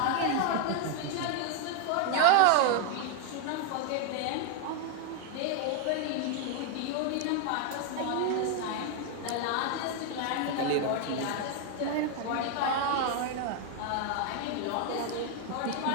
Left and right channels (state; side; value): different; both; correlation 0.01